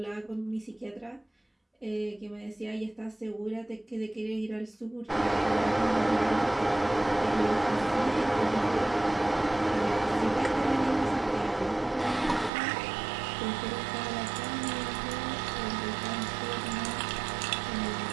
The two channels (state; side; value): drops out; left; at 12.5 s